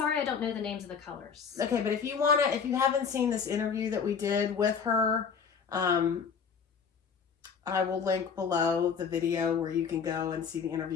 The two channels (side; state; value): right; quieter; 6.3 dB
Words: I don't know the names of the colors. Okay, but if you haven't seen this interview that we did with her, I will link below the video where you can go and see the